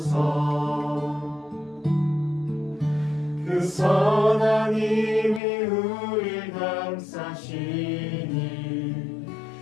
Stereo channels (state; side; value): drops out; right; at 5.4 s